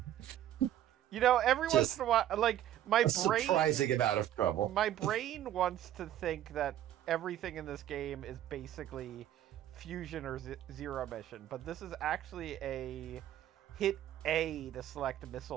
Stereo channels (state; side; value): quieter; left; 11.9 dB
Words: You know, every once Just in a while, like my A brain, surprising amount of trouble. my brain wants to think that everything in this game is basically fusion or zero mission, but this is actually a hit A to select